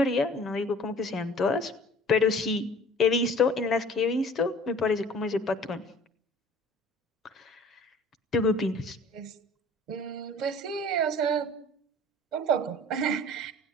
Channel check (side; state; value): both; normal; correlation 0.47